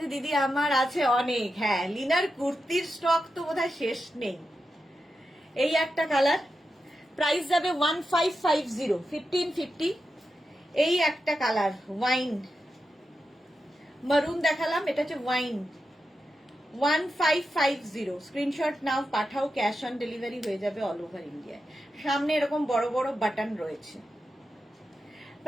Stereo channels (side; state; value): both; normal; correlation 0.89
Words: দিদি আমার আছে অনেক, হ্যাঁ লিনার কুর্তির স্টক তো বোধহয় শেষ নেই। এই একটা কালার, প্রাইস যাবে 1550, 1550। এই একটা কালার ওয়াইন মারুন দেখালাম, এটা হচ্ছে ওয়াইন, 1550। স্ক্রিনশট নাও, পাঠাও, ক্যাশ অন ডেলিভারি হয়ে যাবে অল ওভার ইন্ডিয়ায়। সামনে এরকম বড় বড় বাটন রয়েছে,